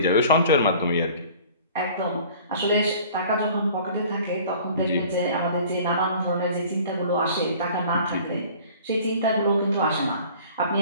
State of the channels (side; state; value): both; inverted; correlation -0.49